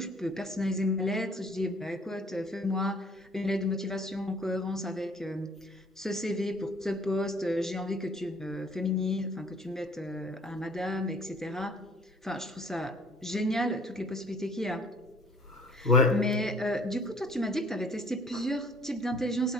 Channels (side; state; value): both; normal; correlation 0.56